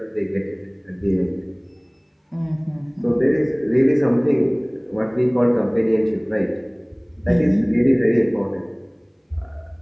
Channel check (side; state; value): both; identical; correlation 1.00